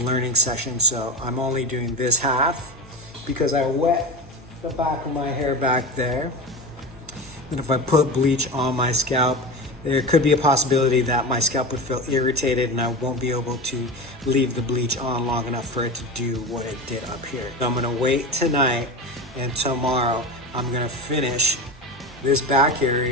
session. So I'm only doing this half because I wet the back of my hair back there. And if I put bleach on my scalp, there could be a possibility that my scalp would feel irritated and I won't be able to leave the bleach on long enough for it to do what it did up here. So I'm gonna wait tonight, and tomorrow I'm gonna finish this back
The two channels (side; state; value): both; normal; correlation 0.25